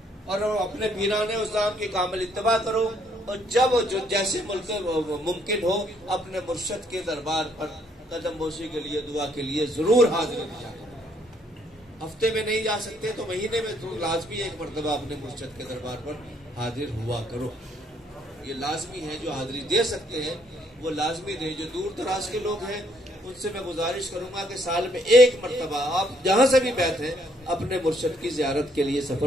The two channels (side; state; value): both; normal; correlation 0.68